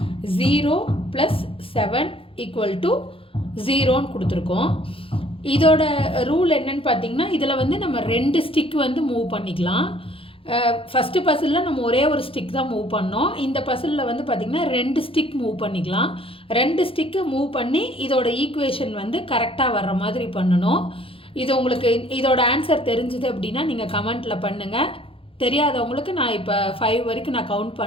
0 + 7 = 0ன்னு கொடுத்துருக்கோம். இதோட ரூல் என்னன்னு பார்த்தீங்கன்னா இதில் வந்து நம்ம 2 ஸ்டிக் வந்து மூவ் பண்ணிக்கலாம். ஃபஸ்ட்டு பசிலில் நம்ம ஒரே ஒரு ஸ்டிக் தான் மூவ் பண்ணோம். இந்த பசிலில் வந்து பார்த்திங்கன்னா 2 ஸ்டிக் மூவ் பண்ணிக்கலாம். 2 ஸ்டிக்கு மூவ் பண்ணி இதோட ஈக்குவேஷன் வந்து கரெக்டாக வர்ற மாதிரி பண்ணணும். இது உங்களுக்கு இதோட ஆன்சர் தெரிஞ்சுது அப்படின்னா நீங்கள் கமெண்ட்டில் பண்ணுங்கள். தெரியாதவங்களுக்கு நான் இப்போ 5 வரைக்கும் நான் கவுண்ட்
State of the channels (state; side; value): late; right; 0.27 ms